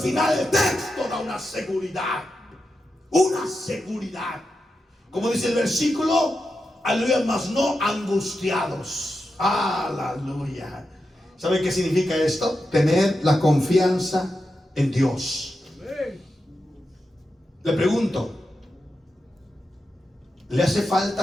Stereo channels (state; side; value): normal; both; correlation 0.89